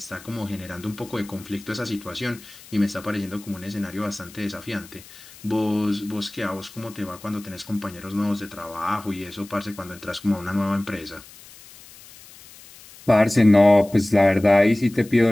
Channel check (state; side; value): noise; left; hiss, 20 dB below the sound